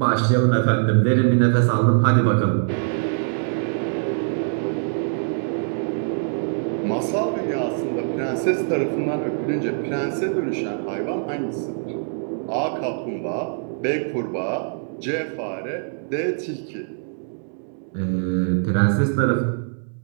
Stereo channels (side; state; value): left; silent; 63 dB below the other